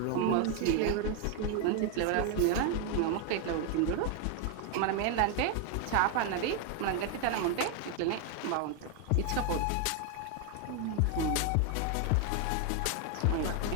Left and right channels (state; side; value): different; both; correlation 0.01